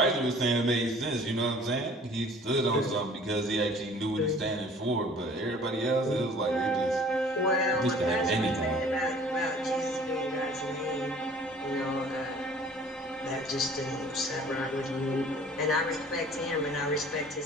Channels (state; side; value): normal; both; correlation 0.50